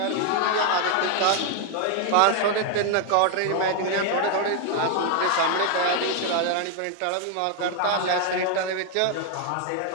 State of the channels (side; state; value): both; different; correlation 0.00